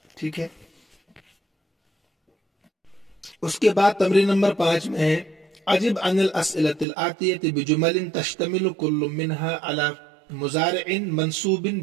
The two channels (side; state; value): left; drops out; at 6.9 s